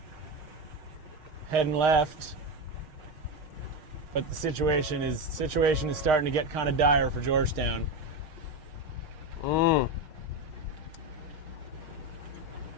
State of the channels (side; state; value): left; late; 6.5 ms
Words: Heading left. But the situation is starting to get kind of dire for Georgetown.